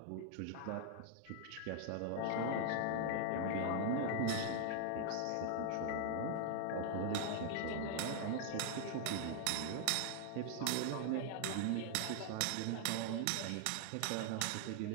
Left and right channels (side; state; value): both; different; correlation 0.00